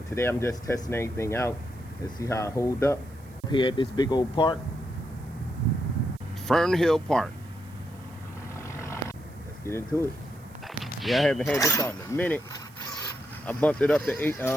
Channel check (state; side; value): noise; right; hiss, 27 dB below the sound